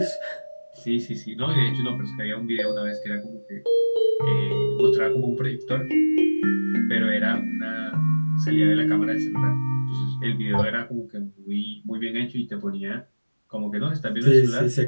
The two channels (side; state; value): both; inverted; correlation -1.00